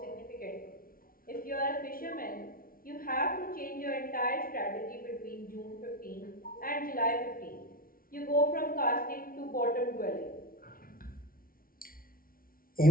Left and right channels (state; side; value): late; right; 0.43 ms